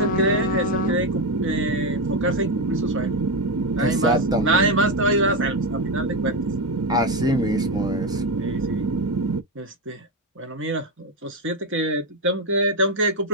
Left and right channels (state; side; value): normal; both; correlation 0.09